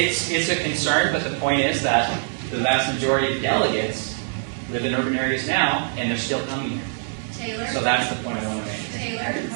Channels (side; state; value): left; silent; digital silence